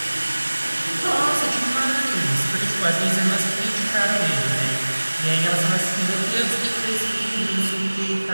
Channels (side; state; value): both; inverted; correlation -1.00